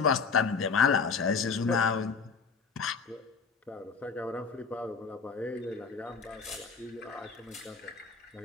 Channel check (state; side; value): quieter; right; 5.1 dB